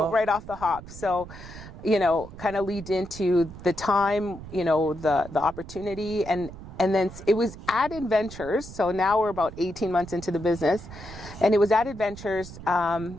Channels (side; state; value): right; noise; rumble, 14 dB below the sound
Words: off the hop. So, you know, kind of lead into the time, you know, the opportunity, and then it was Added Ventures. So now we're about 18 months into the business, and it was Added Ventures